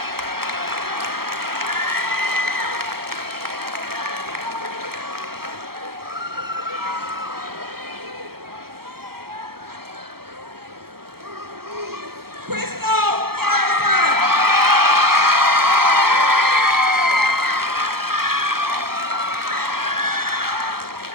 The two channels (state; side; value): late; left; 0.94 ms